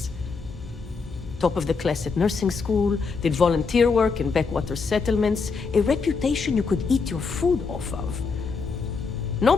Top of the class at nursing school, did volunteer work in backwater settlements, a reputation you could eat your food off of.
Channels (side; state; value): right; quieter; 4.8 dB